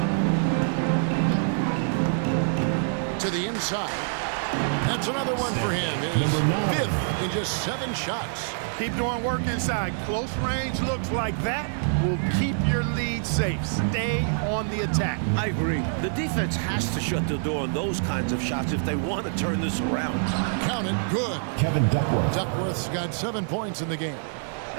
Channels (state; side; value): silent; left; digital silence